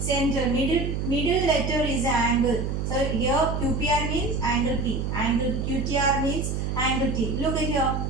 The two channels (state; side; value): noise; right; hum, 2 dB below the sound